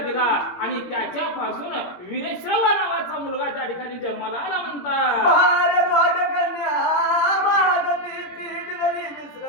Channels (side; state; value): right; late; 17 ms